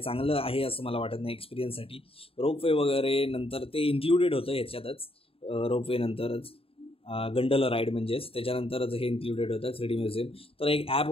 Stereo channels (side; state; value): right; late; 0.27 ms